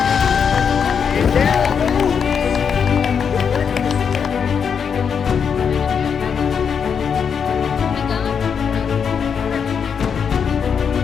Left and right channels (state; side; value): quieter; right; 6.8 dB